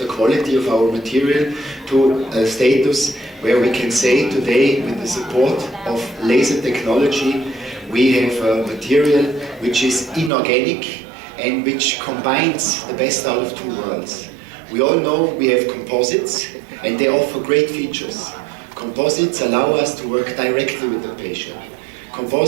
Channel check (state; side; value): drops out; left; at 10.3 s